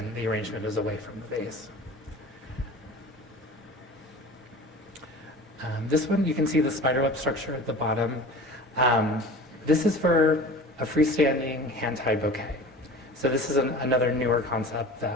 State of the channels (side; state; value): both; normal; correlation 0.38